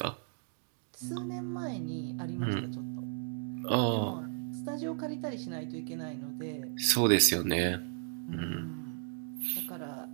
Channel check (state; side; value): silent; left; digital silence